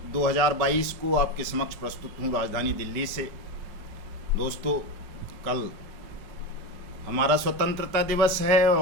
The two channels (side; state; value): left; late; 5.1 ms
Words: 2022 को आपके समक्ष प्रस्तुत हूँ राजधानी दिल्ली से। दोस्तों, कल हमारा स्वतंत्रता दिवस है